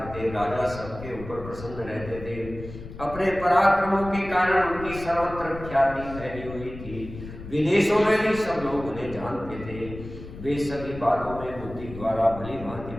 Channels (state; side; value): noise; left; rumble, 13 dB below the sound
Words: थे। राजा सबके ऊपर प्रसन्न रहते थे। अपने पराक्रमों के कारण उनकी सर्वत्र ख्याति फैली हुई थी। विदेशों में भी सब लोग उन्हें जानते थे। वे सभी बातों में बुद्धि द्वारा भली भांति